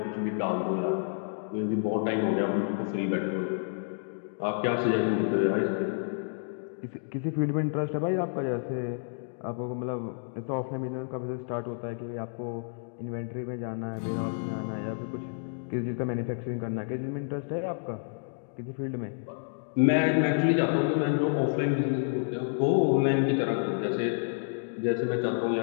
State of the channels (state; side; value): silent; right; digital silence